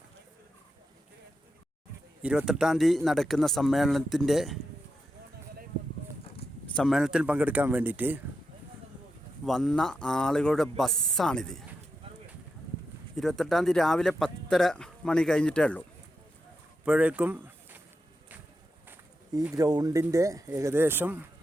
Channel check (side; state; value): both; normal; correlation 0.87